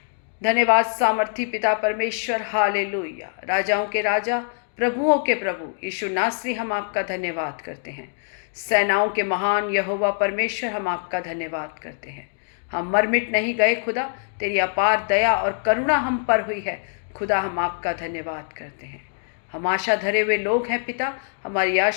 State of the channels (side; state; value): right; silent; digital silence